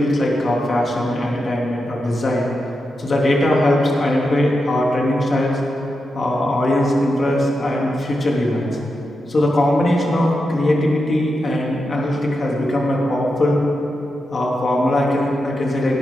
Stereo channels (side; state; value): both; normal; correlation 0.88